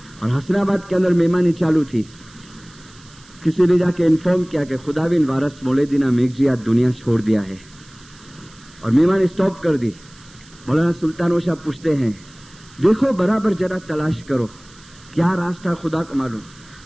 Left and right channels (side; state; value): right; noise; hiss, 25 dB below the sound